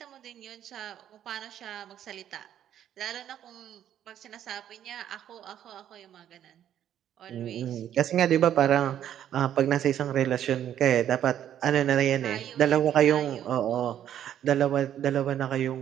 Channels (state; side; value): quieter; left; 10.6 dB